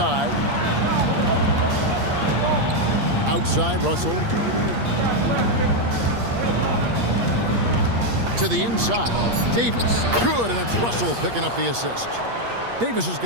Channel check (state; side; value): late; left; 8.5 ms